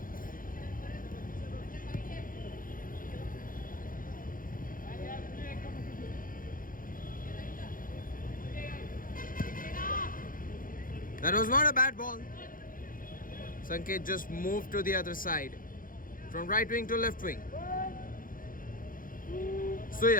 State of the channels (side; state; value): right; late; 0.40 ms